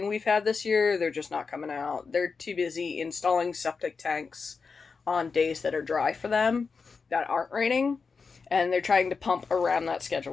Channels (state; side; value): quieter; right; 5.0 dB